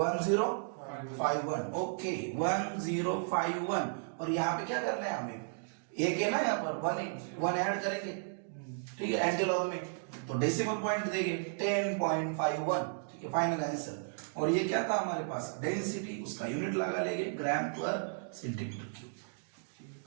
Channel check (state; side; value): silent; left; digital silence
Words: ओके 1051। और यहाँ पे क्या करना है हमें, एक है ना यहाँ पर वन ऐड करेंगे, ठीक है, एंटीलॉग में, तो डेसिमल पॉइंट देंगे 10.51, ठीक है, फाइनल आंसर। और ये क्या था हमारे पास, डेंसिटी, उसका यूनिट लगा लेंगे ग्राम पर सेंटीमीटर क्यूब,